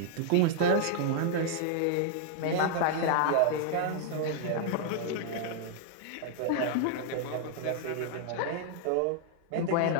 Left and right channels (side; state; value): both; different; correlation -0.01